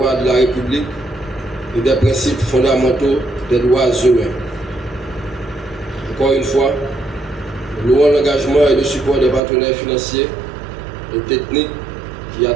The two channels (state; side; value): drops out; left; at 9.4 s